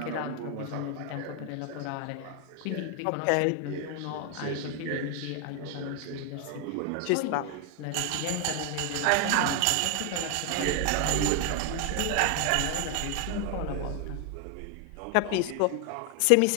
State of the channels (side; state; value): both; different; correlation 0.01